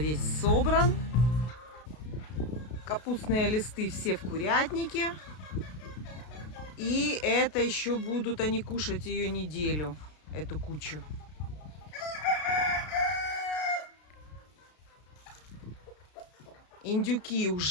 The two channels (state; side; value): late; right; 33 ms